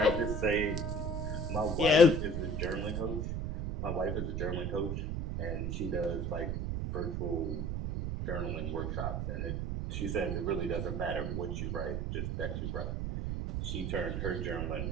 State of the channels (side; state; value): right; noise; rumble, 1 dB below the sound